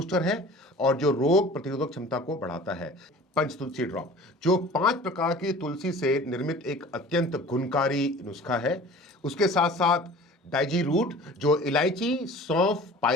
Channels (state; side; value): normal; both; correlation 0.44